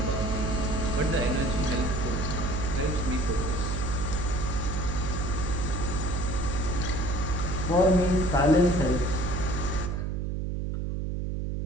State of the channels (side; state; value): right; noise; hum, 2 dB below the sound